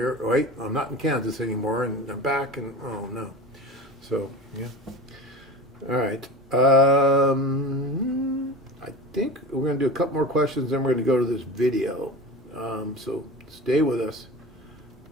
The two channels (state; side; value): normal; both; correlation 0.32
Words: wait, I'm not in Kansas anymore. And they're back and, oh, no. So, yeah. All right. I think we're going to do a couple more questions, then we're going to go to this video. So stay with us.